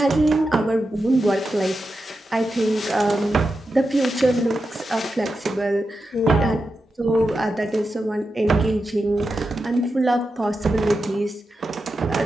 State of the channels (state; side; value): normal; both; correlation 0.89